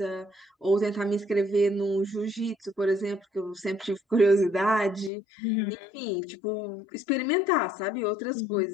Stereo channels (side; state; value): right; drops out; at 5.1 s